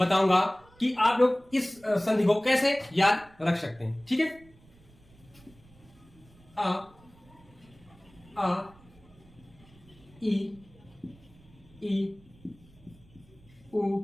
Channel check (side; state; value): right; noise; rumble, 26 dB below the sound